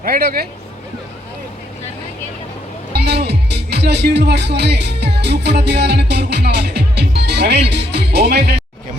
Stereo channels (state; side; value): normal; both; correlation 0.73